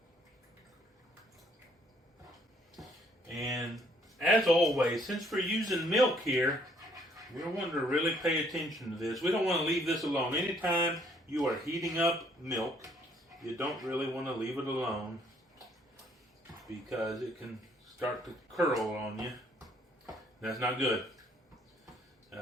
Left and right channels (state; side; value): normal; both; correlation 0.65